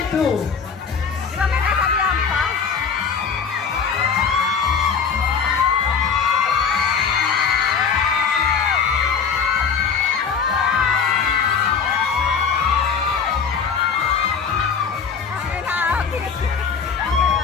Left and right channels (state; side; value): quieter; right; 6.2 dB